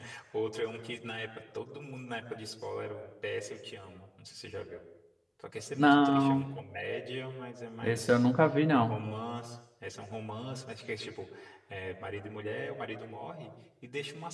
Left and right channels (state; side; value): identical; both; correlation 1.00